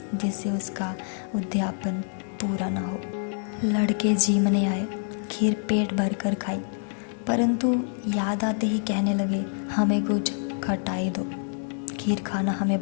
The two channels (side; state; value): right; silent; 57 dB below the other